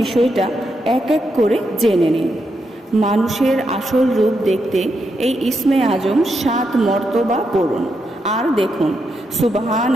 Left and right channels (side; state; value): both; normal; correlation 0.82